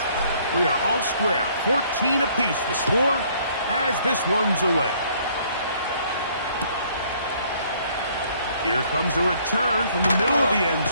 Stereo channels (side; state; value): both; inverted; correlation -0.62